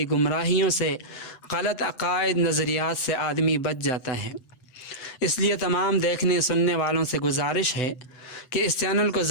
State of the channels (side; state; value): right; late; 7.9 ms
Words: گمراہیوں سے، غلط عقائد، نظریات سے آدمی بچ جاتا ہے۔ اس لیے تمام دیکھنے سننے والوں سے گزارش ہے کہ اس چینل کو